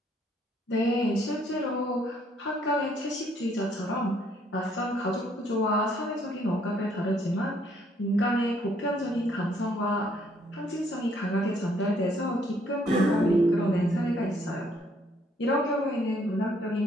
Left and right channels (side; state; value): both; normal; correlation 0.67